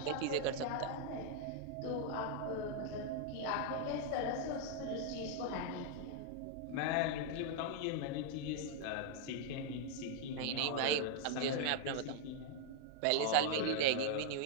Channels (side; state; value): both; different; correlation 0.00